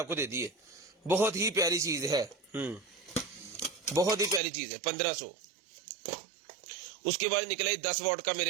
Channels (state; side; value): drops out; left; at 4.4 s